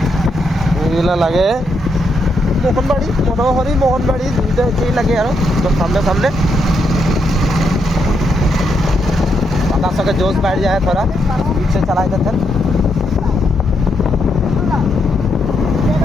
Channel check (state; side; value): normal; both; correlation 0.79